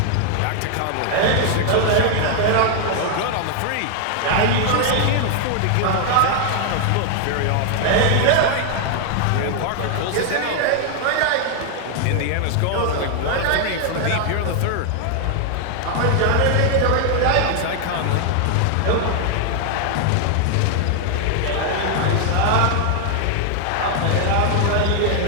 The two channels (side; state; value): both; different; correlation 0.00